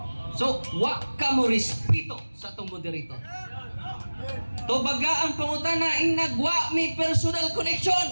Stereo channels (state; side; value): inverted; both; correlation -1.00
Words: So wa ka mo respeto sa atong moderator. To baga ang pangutana ing nagwa mi personal